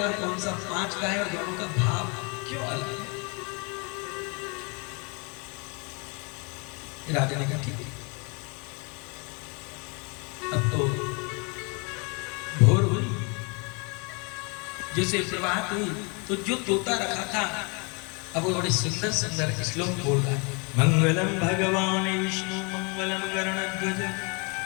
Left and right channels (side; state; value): right; quieter; 32.6 dB